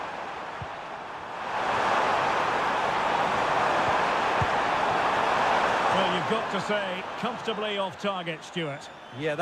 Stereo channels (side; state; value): both; identical; correlation 1.00